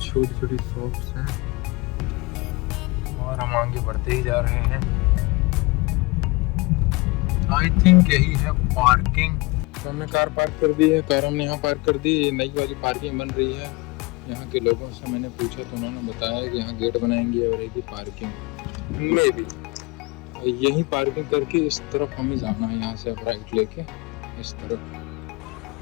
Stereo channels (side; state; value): right; quieter; 24.8 dB